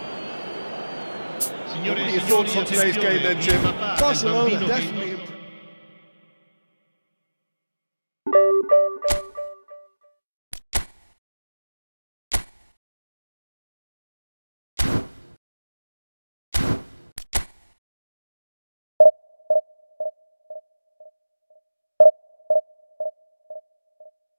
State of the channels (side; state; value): both; inverted; correlation -1.00